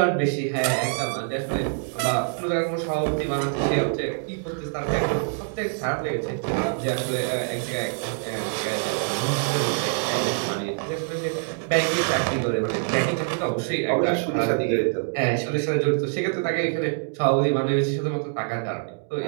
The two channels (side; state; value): left; silent; 62 dB below the other